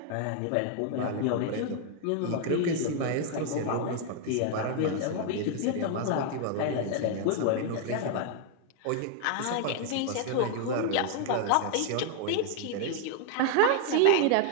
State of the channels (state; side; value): different; both; correlation 0.00